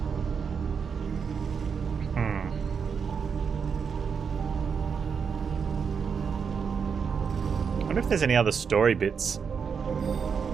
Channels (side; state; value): left; quieter; 6.3 dB